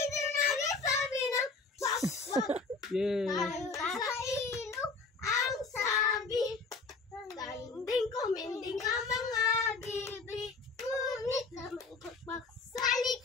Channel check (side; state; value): right; quieter; 4.2 dB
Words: din sabi ng quack, quack. Yay! Nasa ilog ang sabi. Tanding kuminding ang mga bibig. Ngunit naman quack, sa